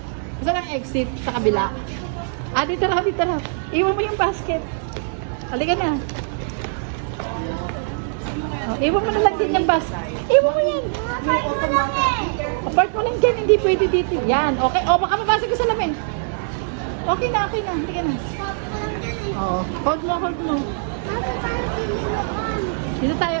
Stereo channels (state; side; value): silent; left; digital silence